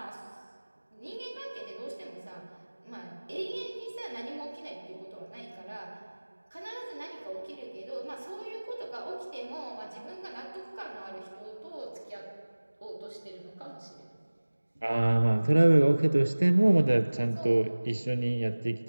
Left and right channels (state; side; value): inverted; both; correlation -1.00